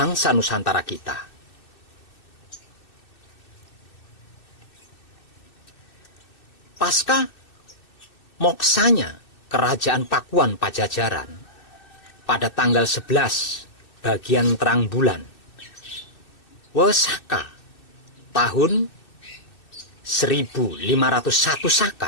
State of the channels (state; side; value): late; right; 2.6 ms